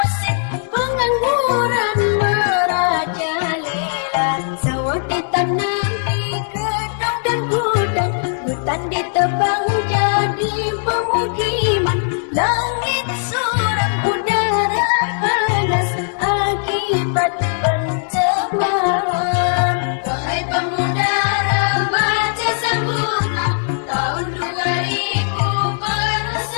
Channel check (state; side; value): silent; right; 66 dB below the other